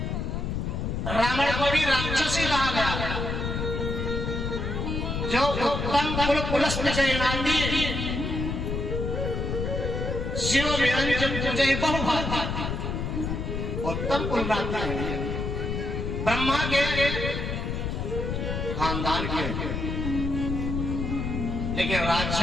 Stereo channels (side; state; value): left; noise; rumble, 2 dB below the sound